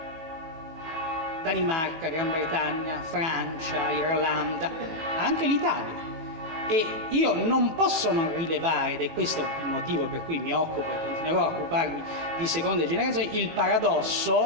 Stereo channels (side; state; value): left; late; 18 ms